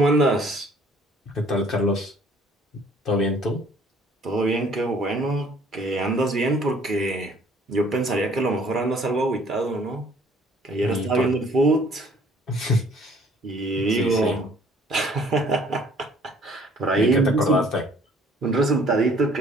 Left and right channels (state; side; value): normal; both; correlation 0.57